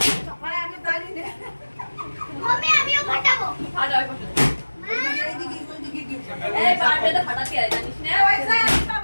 মানে আমি জানি না মম্মি আমিও ফাটাবো ফাটা ওই পাশে। এইদিকে ওইদিকে কি এই বার্থডে তো ফাটাতে হয় জানিস না? পয়সা একটা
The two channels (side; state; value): both; inverted; correlation -1.00